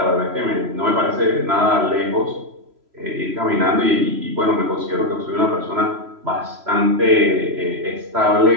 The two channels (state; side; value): late; left; 3.0 ms